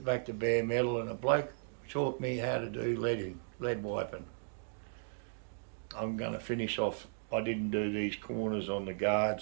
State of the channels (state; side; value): silent; left; digital silence